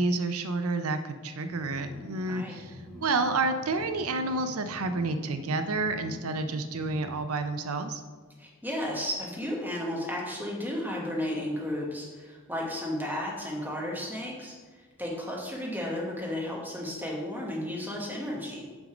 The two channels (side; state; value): both; normal; correlation 0.34